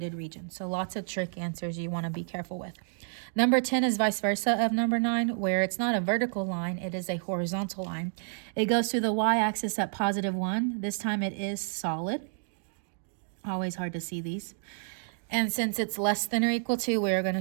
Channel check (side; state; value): left; silent; digital silence